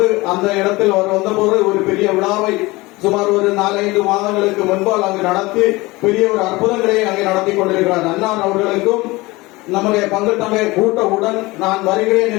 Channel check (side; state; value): right; quieter; 21.7 dB